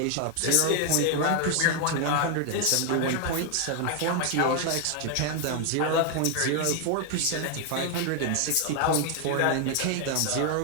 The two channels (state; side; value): different; both; correlation 0.00